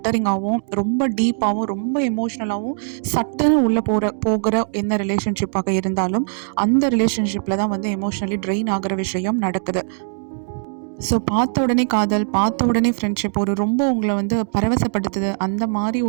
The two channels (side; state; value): left; silent; digital silence